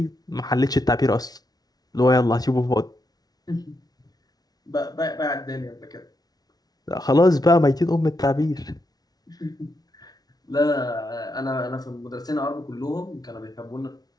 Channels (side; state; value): right; late; 0.19 ms